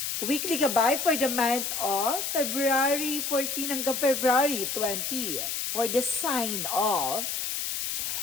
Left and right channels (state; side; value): noise; left; hiss, 2 dB below the sound